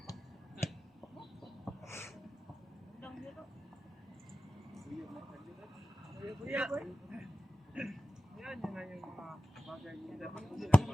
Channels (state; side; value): normal; both; correlation 0.95